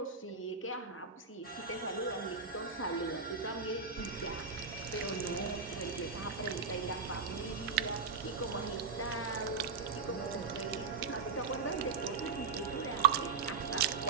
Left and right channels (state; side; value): quieter; left; 5.2 dB